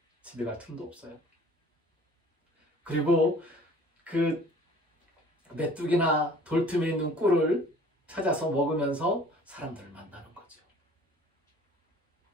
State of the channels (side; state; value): both; normal; correlation 0.50